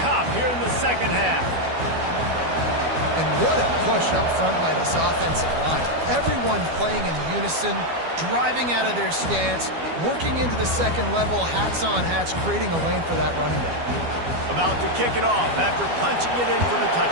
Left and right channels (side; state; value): left; late; 12 ms